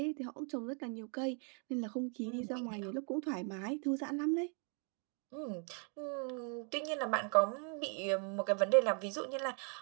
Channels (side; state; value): left; quieter; 39.8 dB